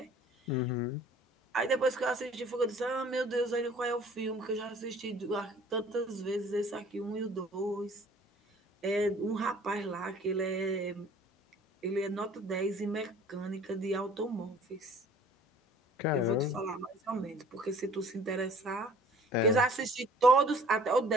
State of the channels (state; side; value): normal; both; correlation 0.51